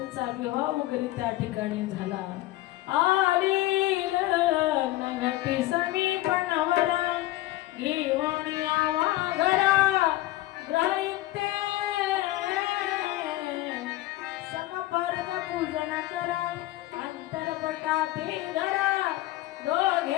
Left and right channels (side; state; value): right; quieter; 16.8 dB